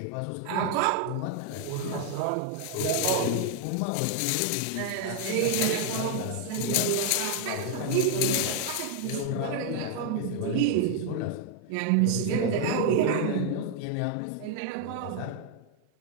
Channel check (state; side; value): different; both; correlation 0.00